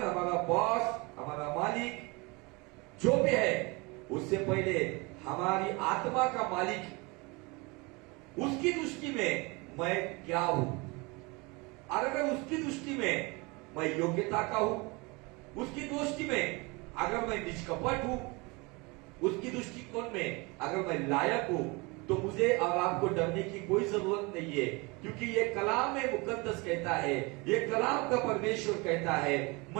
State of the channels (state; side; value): quieter; left; 26.8 dB